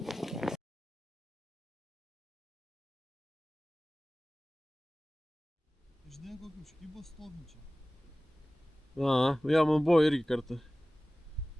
Žinai, kokį užkybą stovinčią. Jo, man buvo irgi kartu.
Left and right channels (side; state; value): both; normal; correlation 0.97